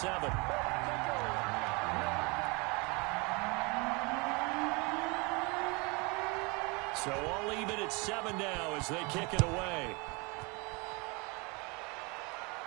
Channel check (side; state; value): left; quieter; 28.8 dB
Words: So all even at 7 now as they kick it away.